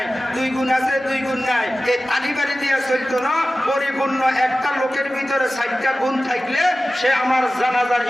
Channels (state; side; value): normal; both; correlation 0.96